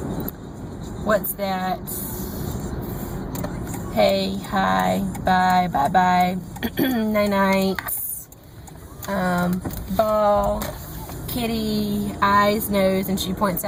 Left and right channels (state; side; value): identical; both; correlation 1.00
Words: what's that? Hey, hi, bye, bye-bye, night-night, ball, kitty, eyes, nose, and she points